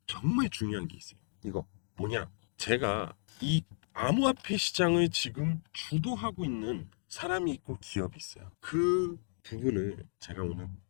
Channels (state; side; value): silent; right; digital silence